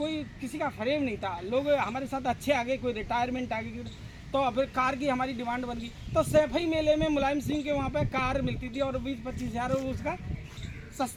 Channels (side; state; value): both; identical; correlation 1.00